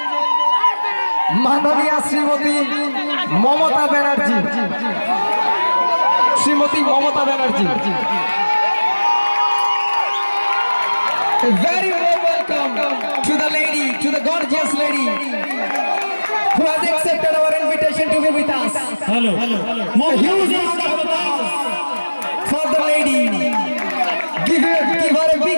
মাননীয় Shrimati Mamata Banerjee. Shrimati Mamata Banerjee, a very warm welcome to the lady, to the gorgeous lady who has accepted our invitation to be with us. Hello. A huge round of applause for the lady. Give her a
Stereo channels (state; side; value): inverted; both; correlation -1.00